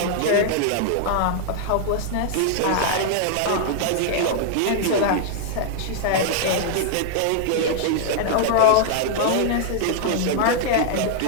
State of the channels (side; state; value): both; different; correlation -0.01